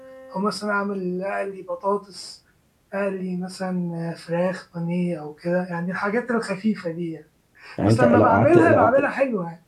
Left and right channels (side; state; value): both; identical; correlation 1.00